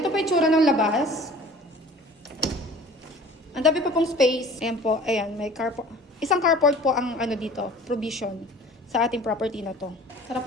po itsura ng labas. Ang dami pa pong space. Ayan po, ayan, may carport. Isang carport po ang ano dito, provision sa ating property na to. Tara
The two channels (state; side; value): normal; both; correlation 0.46